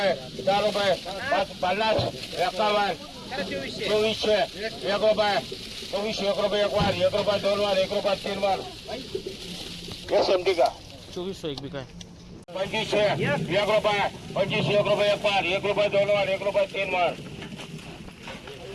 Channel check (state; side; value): identical; both; correlation 1.00